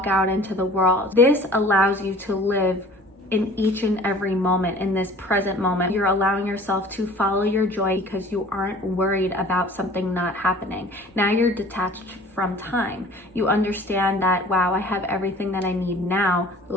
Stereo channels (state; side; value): normal; both; correlation 0.47